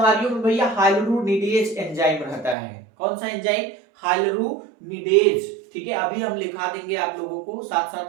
में भैया हाइलुरोनिडेज एंजाइम रहता है। कौन सा एंजाइम? हाइलुरोनिडेज। ठीक है, अभी हम लिखा देंगे आप लोगों को, साथ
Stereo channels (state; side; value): drops out; left; at 2.6 s